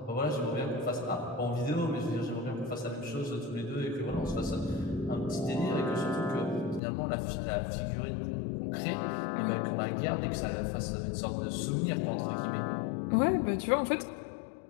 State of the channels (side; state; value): right; drops out; at 6.8 s